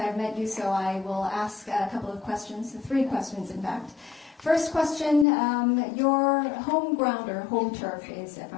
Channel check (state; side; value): drops out; right; at 5.2 s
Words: met you, so I will ask a couple of questions, 3 questions in fact. First question, your home ground or home turf is